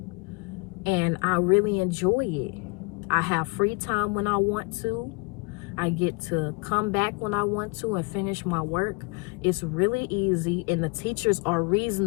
And I really enjoy it. I have free time when I want to. I get to come back when I want to and finish my work. It's really easy, and the teachers are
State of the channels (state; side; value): quieter; right; 29.9 dB